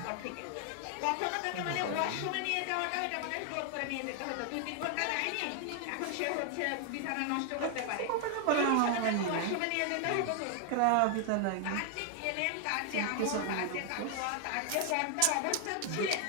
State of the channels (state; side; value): different; both; correlation 0.00